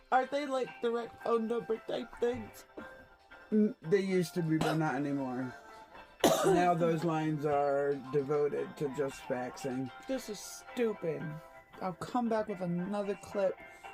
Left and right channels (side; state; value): both; identical; correlation 1.00